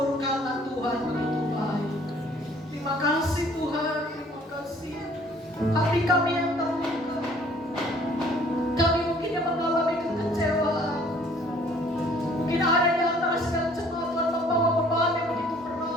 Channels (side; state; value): both; normal; correlation 0.57